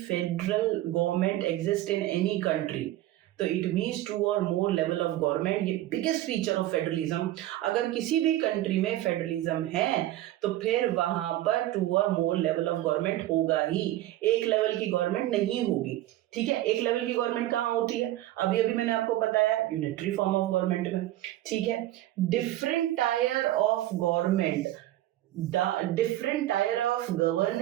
government exist in any country तो इट मीन्स 2 और मोर लेवल ऑफ गवर्नमेंट। ये बिगेस्ट फीचर ऑफ फेडरलिज्म। अगर किसी भी कंट्री में फेडरलिज्म है तो फिर वहां पर 2 और मोर लेवल ऑफ गवर्नमेंट होगा ही, एक लेवल की गवर्नमेंट नहीं होगी। ठीक है, एक लेवल की गवर्नमेंट कहाँ होती है, अभी अभी मैंने आपको बताया यूनिटरी फॉर्म ऑफ गवर्नमेंट में। ठीक है, different tyre of government, different tier of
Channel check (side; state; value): left; quieter; 14.9 dB